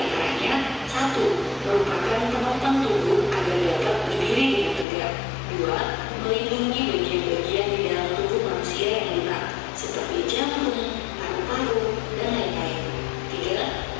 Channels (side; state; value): right; drops out; at 4.9 s